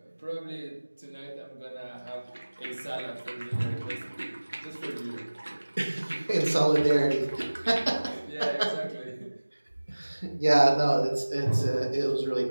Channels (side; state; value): both; inverted; correlation -1.00